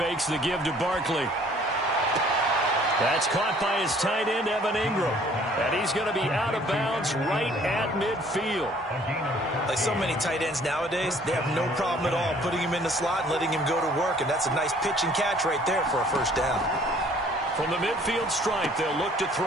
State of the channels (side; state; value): both; normal; correlation 0.57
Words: the give to Barkley. That's caught by his tight end, Evan Ingram. And he's going to be out of bounds right at midfield. Like so many tight ends nowadays, they have no problem at all putting him in the slot and letting him go to work. And that's a nice pitch and catch right there for a 1st down. From the midfield stripe, they'll look to